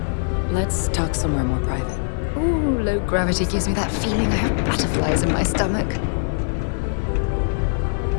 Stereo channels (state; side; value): silent; right; digital silence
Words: Let's talk somewhere more private. Ooh, low gravity gives me that feeling I have butterflies in my stomach.